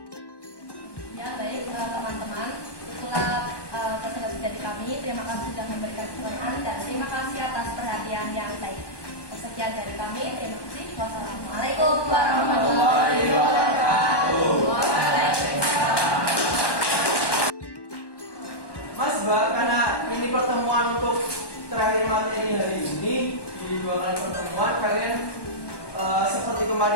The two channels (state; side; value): late; right; 1.1 ms